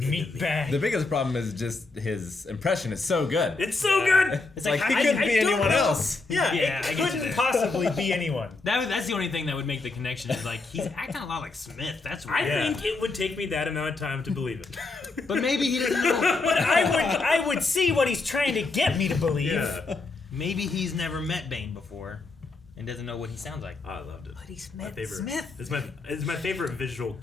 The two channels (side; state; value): right; quieter; 3.6 dB